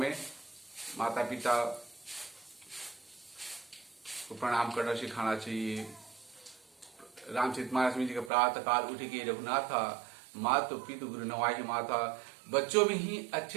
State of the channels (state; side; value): drops out; left; at 8.3 s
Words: माता पिता को प्रणाम करना सिखाना चाहिए। रामचरितमानस में जी का प्रातः काल उठ के रघुनाथा मातु पितु गुरु नवाहि माता। बच्चों में ही